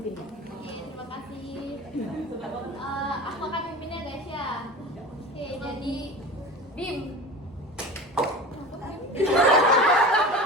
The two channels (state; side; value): normal; both; correlation 0.34